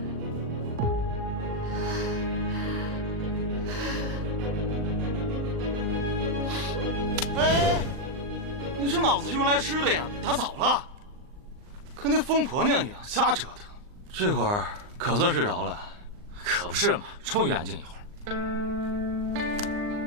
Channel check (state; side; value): late; left; 39 ms